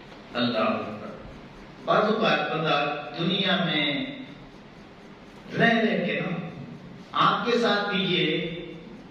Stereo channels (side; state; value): both; identical; correlation 1.00